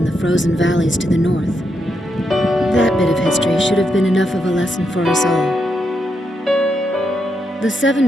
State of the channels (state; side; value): normal; both; correlation 0.82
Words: the frozen valleys to the north. That bit of history should have been enough of a lesson for us all. The